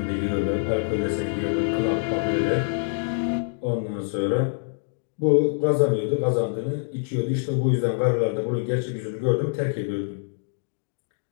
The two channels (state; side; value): silent; right; digital silence